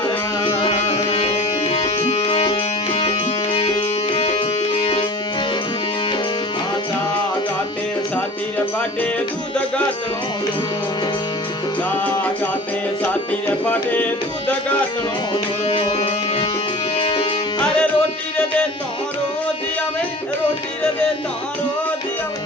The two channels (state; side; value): normal; both; correlation 0.40